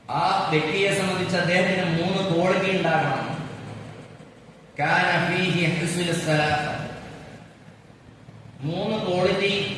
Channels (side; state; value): both; identical; correlation 1.00